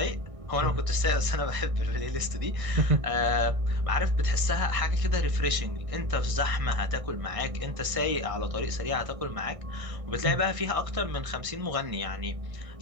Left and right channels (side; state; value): left; late; 1.6 ms